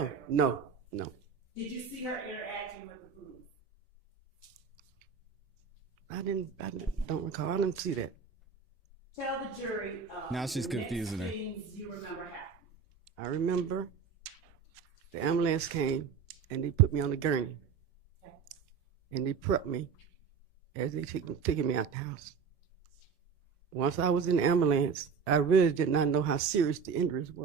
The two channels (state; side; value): quieter; left; 6.2 dB